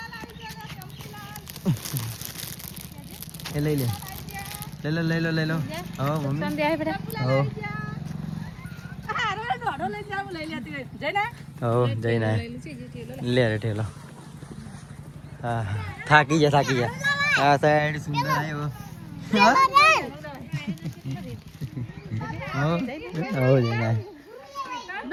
એ લઈ લો હા મમ્મી જઈને લે રે ઠેલો. હા થાકી જા આ સાઈડ સુંદર આવ્યો.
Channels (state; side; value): identical; both; correlation 1.00